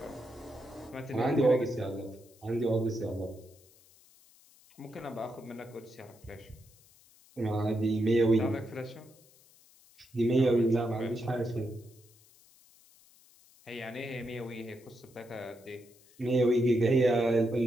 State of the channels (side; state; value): left; noise; hiss, 27 dB below the sound